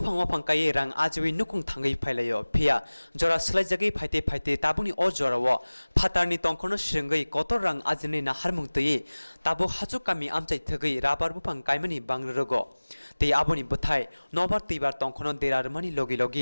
Waphang Kairang Ajwi nukung thangai phailayo phia jora slaijagi phaite tabuni o jorawo phatarni tongkhono sringai kotorang ajini na harmungtei tabo hachuk kami Amchai thgai rabar Buphang kaimani bangrogo te aboni buthai nobar tibar tongkhono derarmani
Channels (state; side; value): inverted; both; correlation -1.00